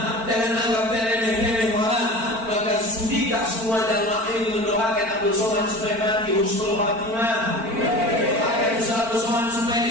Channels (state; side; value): late; left; 4.4 ms